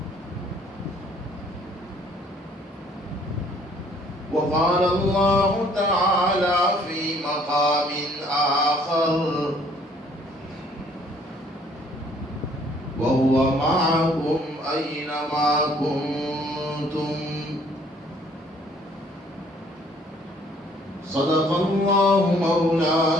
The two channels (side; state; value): both; normal; correlation 0.60